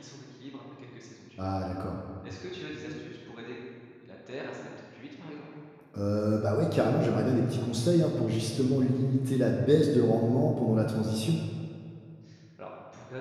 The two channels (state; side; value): identical; both; correlation 1.00